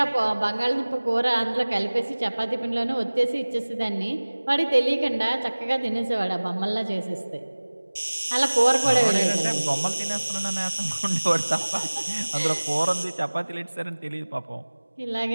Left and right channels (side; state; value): both; inverted; correlation -1.00